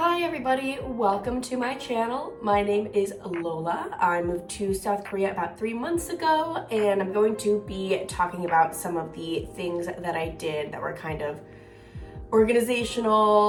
everybody, welcome to my channel. My name is Lola. I moved to South Korea about 3 months ago, and I'm going to be talking about some of the things that I did that were kind of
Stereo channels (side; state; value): both; identical; correlation 1.00